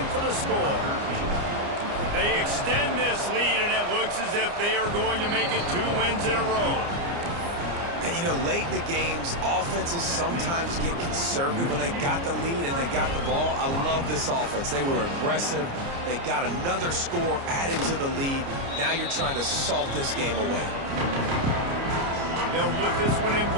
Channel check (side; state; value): left; late; 29 ms